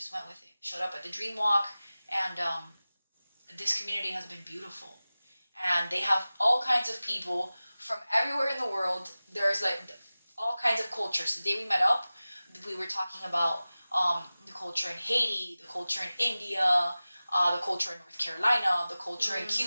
went with it. Showed up at the Dream Walk, and this community has been beautiful. And they have all kinds of people from everywhere in the world. There's like all kinds of cultures. The day we met up, we were talking about the culture in Haiti, the culture in India, the culture in North Carolina, the culture in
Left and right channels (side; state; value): both; inverted; correlation -0.97